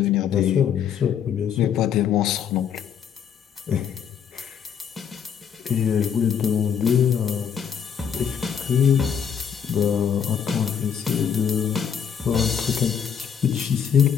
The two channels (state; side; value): quieter; right; 7.8 dB